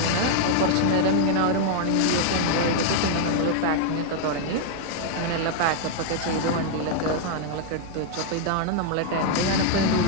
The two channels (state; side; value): different; both; correlation -0.01